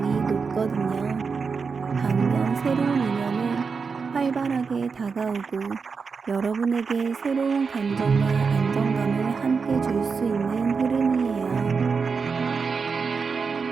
높거든요. 반면 새로운 인연은 활발하게 다가오고 여러분에게 새로운 감정과 안정감을 함께 줄 수 있는 흐름이에요.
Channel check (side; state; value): left; quieter; 5.2 dB